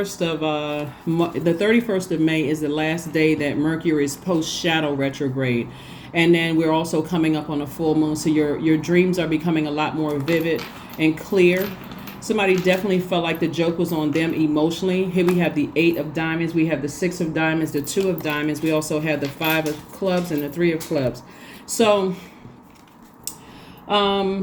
of May is the last day that Mercury is post-shadow retrograde. And then we're also coming up on a full moon. So your dreams are becoming a lot more vivid and clear. Somebody definitely felt like the joke was on them emotionally. Here we have the 8 of diamonds. We have the 6 of diamonds, the 2 of diamonds. We also have the 5 of clubs and the 3 of clubs. So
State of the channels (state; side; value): identical; both; correlation 1.00